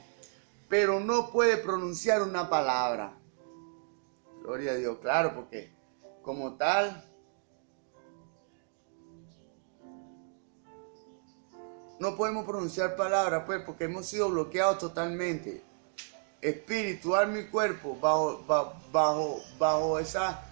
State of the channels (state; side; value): silent; left; 56 dB below the other